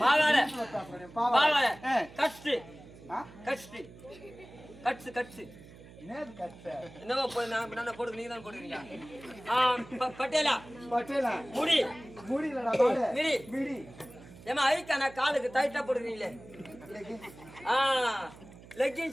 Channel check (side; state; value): right; noise; hum, 19 dB below the sound